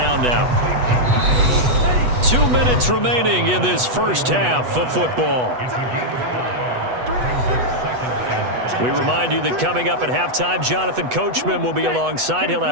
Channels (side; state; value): left; late; 8.1 ms